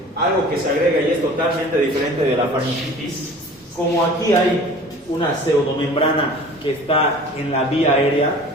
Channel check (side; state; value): both; normal; correlation 0.44